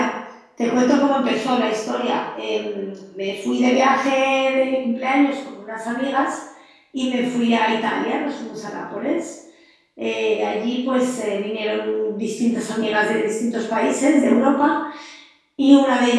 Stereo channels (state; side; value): identical; both; correlation 1.00